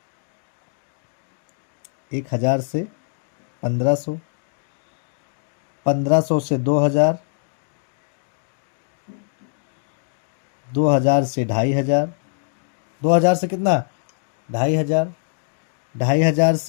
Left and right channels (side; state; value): right; silent; digital silence